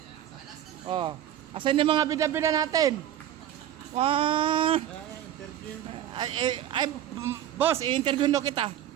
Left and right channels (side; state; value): left; quieter; 11.3 dB